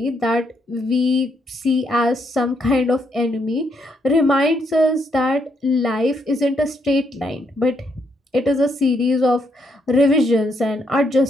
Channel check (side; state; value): both; normal; correlation 0.76